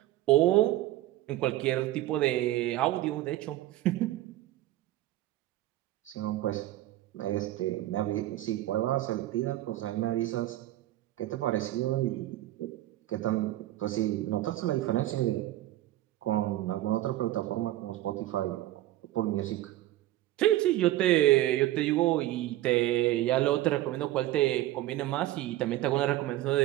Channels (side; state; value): left; quieter; 15.2 dB